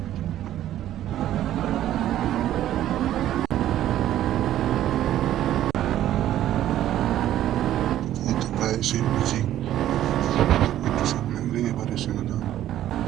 এই তো প্রায় এসে গেছি, একটু সামনে গেলেই এবার এসে গেলাম।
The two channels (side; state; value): left; quieter; 12.5 dB